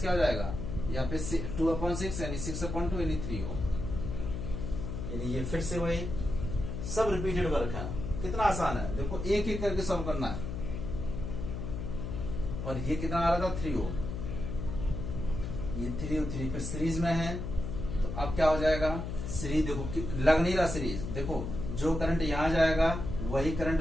हो जाएगा यहाँ पे 2/6 यानी 6/2 यानी 3 ओम। यानी ये फिर से वही सब रिपीटेड वर्क है। कितना आसान है, देखो एक एक करके सॉल्व करना है। और ये कितना आ रहा था 3 ओम, ये 3 और 3 फिर सीरीज में है। तो अब क्या हो जाएगा, सीरीज देखो लग नहीं रहा सीरीज, देखो जो करंट यहाँ जाएगा वही करंट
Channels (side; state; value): left; noise; hum, 5 dB below the sound